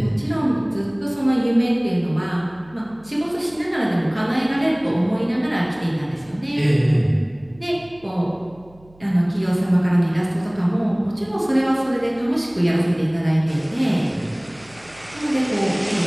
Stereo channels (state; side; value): noise; right; hum, 27 dB below the sound